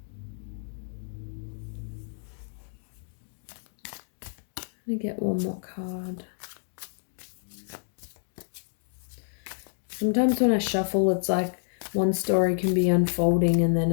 Let me get one more card. Sometimes when I shuffle, it's like one story can be unfolding and then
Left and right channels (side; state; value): right; silent; digital silence